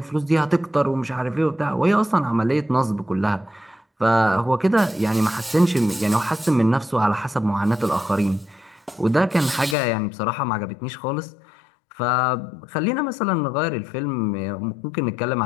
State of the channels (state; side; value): drops out; right; at 9.8 s